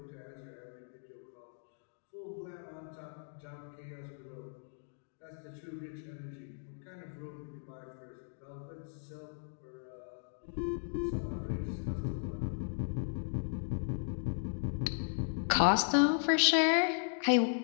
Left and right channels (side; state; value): right; silent; digital silence